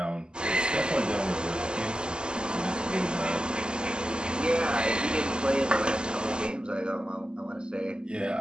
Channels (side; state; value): left; late; 0.048 ms